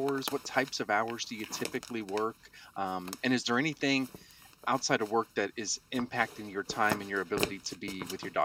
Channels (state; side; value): identical; both; correlation 1.00